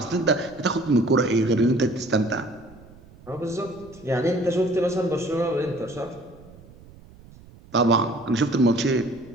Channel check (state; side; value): noise; right; rumble, 22 dB below the sound